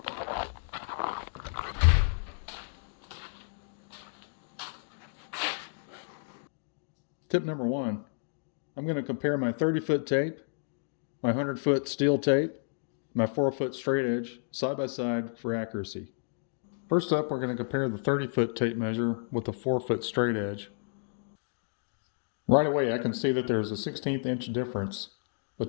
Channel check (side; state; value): right; silent; digital silence